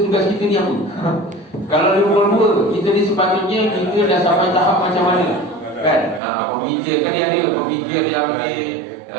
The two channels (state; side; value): drops out; left; at 6.2 s